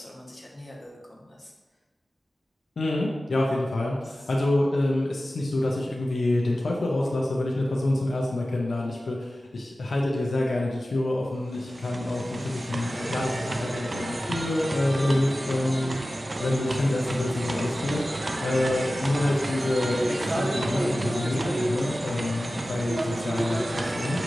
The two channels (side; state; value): both; normal; correlation 0.95